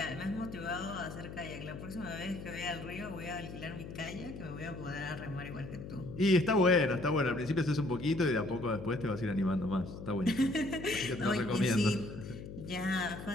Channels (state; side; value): noise; left; hum, 10 dB below the sound